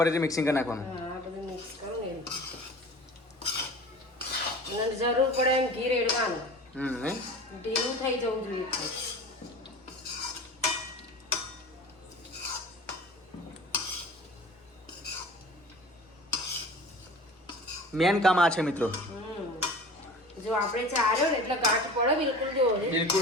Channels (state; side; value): normal; both; correlation 0.39